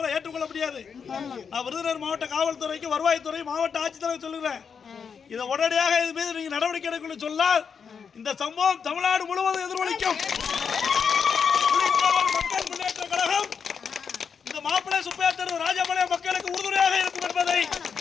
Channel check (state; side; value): quieter; right; 6.4 dB